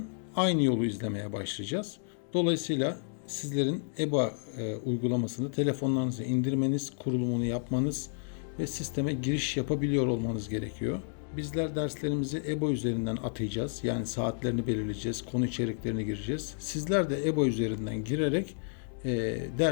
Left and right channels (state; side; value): silent; right; digital silence